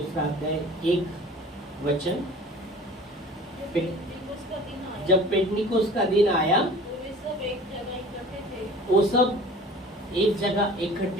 अध्याय 1 वचन। जब पेंटिकोस्त का दिन आया, वो सब एक जगह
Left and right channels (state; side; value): normal; both; correlation 0.44